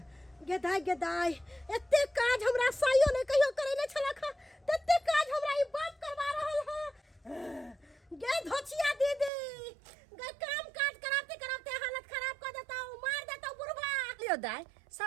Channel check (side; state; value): left; drops out; at 9.3 s